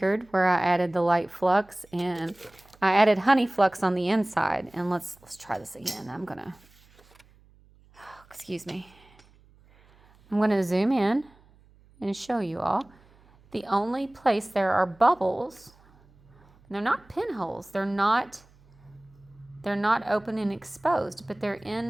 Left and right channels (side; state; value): right; noise; hum, 29 dB below the sound